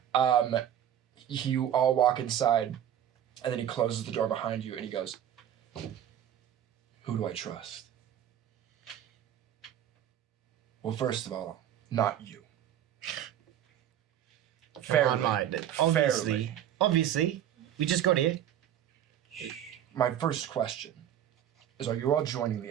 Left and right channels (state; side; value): quieter; left; 10.5 dB